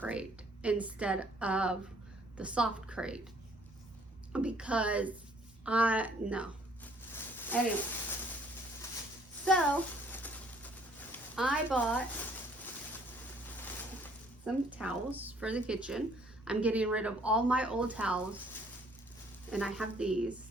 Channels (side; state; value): both; normal; correlation 0.61